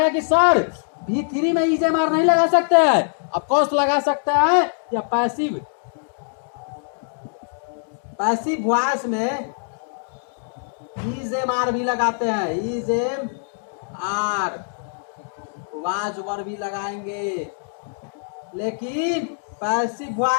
कि सर V3 में इज एम आर नहीं लगा सकते हैं? अब कौन लगा सकते हैं? या पैसिव वॉइस में इज एम आर भी लगाते हैं। Is am are was were भी लगाएंगे, लेकिन पैसिव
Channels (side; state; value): right; silent; digital silence